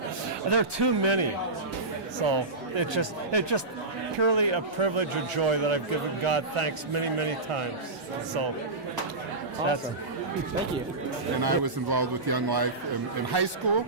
are too many. So it's just purely a privilege or joy that I've given God thanks many, many times. So that's awesome. Thank you. And I was involved with Young Life in high school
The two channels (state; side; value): quieter; left; 3.1 dB